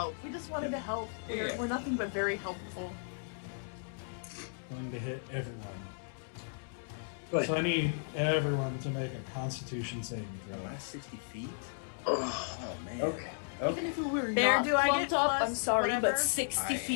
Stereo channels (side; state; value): right; silent; digital silence